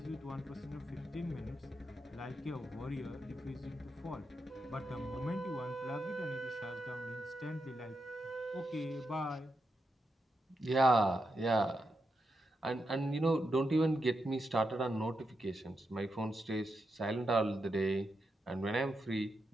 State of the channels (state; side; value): normal; both; correlation 0.85